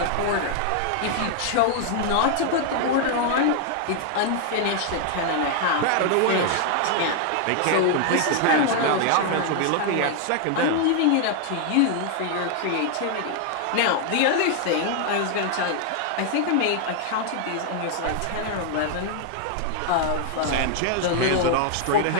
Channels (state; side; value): different; both; correlation 0.00